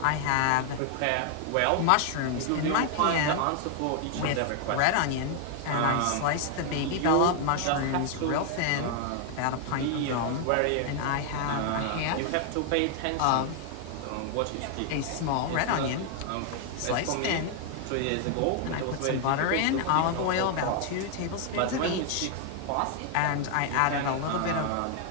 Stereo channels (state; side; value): different; both; correlation 0.00